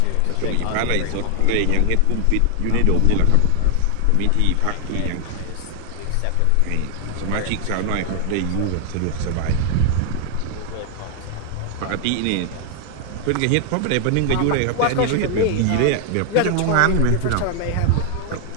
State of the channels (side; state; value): both; different; correlation 0.00